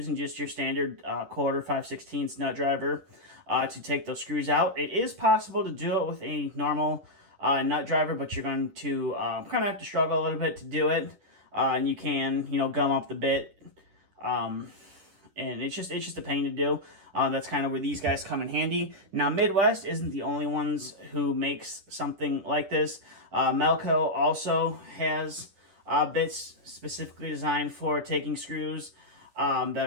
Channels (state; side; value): late; left; 10 ms